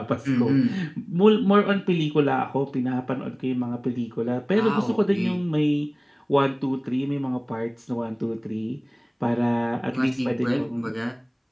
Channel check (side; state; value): both; identical; correlation 1.00